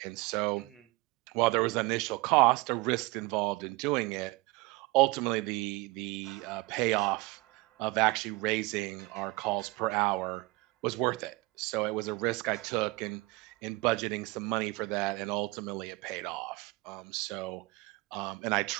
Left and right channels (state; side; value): quieter; left; 23.0 dB